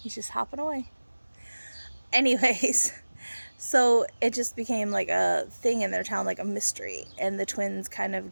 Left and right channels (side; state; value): both; inverted; correlation -1.00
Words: He's just hopping away. Anyways, so it just became like a thing in their town, like a mystery, and the twins kind of